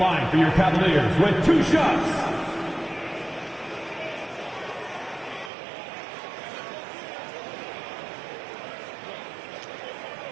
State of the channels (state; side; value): drops out; left; at 5.5 s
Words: for your Cavaliers with 2 shots.